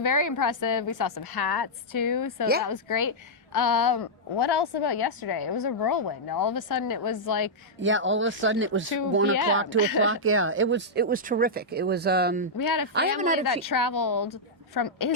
very impressive. We saw some hats too, so Yeah. that was great. What else about yesterday? It was a whirlwind. All of a sudden it was like All of a sudden it was 2 1 p.m. o'clock, 2 o'clock. Yeah, it was terrific. It was. we had a I haven't family had a that traveled from from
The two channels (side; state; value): both; normal; correlation -0.08